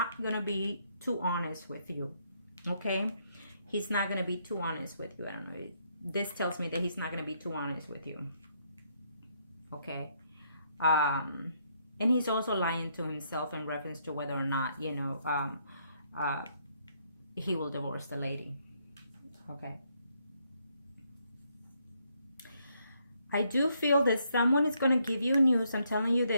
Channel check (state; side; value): inverted; both; correlation -0.73